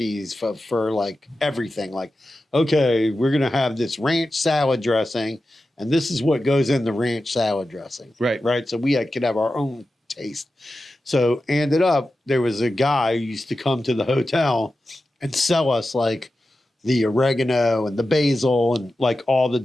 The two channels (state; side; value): normal; both; correlation 0.92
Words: for like everything. Like, okay, we're gonna have this ranch salad dressing, and this is what goes in the ranch salad dressing. Right. So we could have our own taste. So ended up there was a guy who used to come to the hotel and sell us like the oregano and the basil and like all the